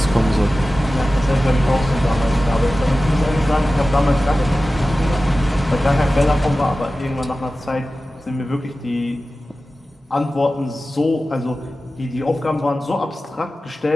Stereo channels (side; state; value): both; normal; correlation 0.95